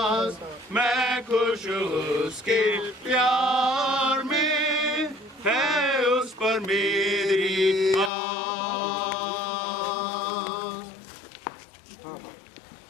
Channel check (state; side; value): drops out; right; at 8.1 s